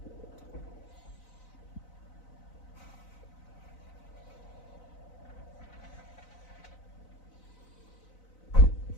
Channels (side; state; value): right; late; 4.0 ms